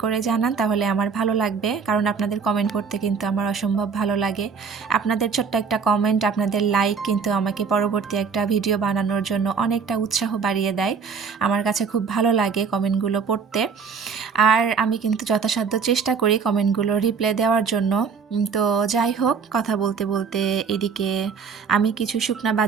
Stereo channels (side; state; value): left; quieter; 5.8 dB